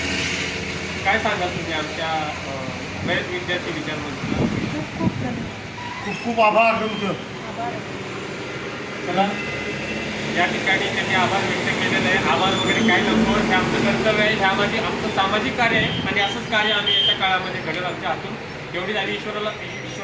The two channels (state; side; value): identical; both; correlation 1.00